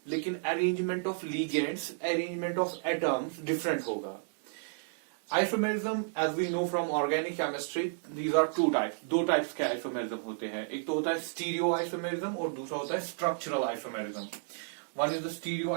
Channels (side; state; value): left; silent; digital silence